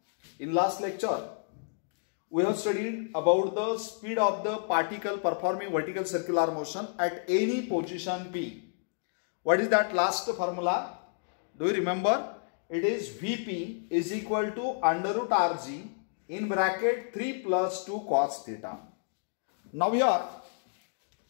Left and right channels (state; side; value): silent; right; digital silence